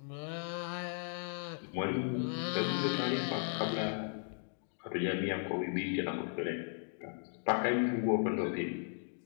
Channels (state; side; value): silent; right; digital silence